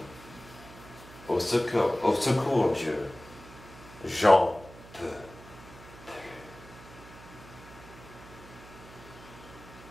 Au secours Dieu, j'en peux plus.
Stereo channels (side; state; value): right; noise; hum, 18 dB below the sound